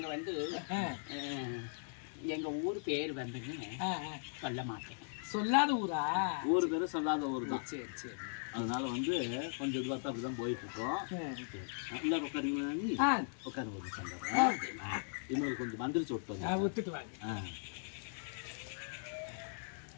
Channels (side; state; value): right; silent; digital silence